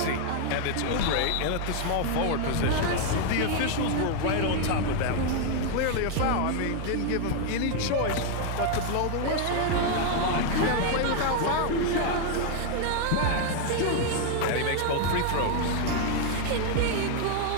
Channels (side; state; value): both; different; correlation 0.00